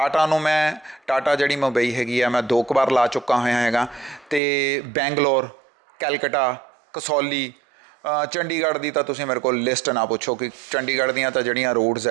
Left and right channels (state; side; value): drops out; left; at 4.4 s